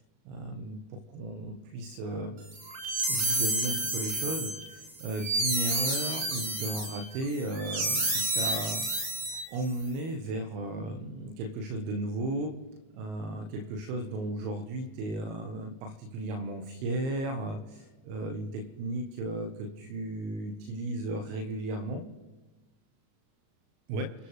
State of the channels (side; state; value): left; late; 38 ms